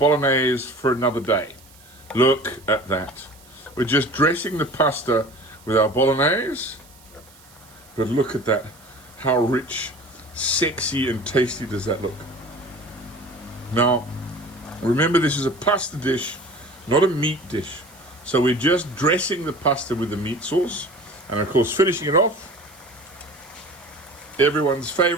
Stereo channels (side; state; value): right; noise; hiss, 25 dB below the sound